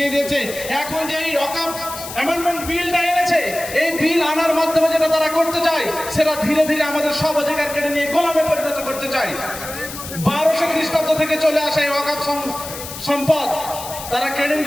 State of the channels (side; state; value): left; noise; hiss, 11 dB below the sound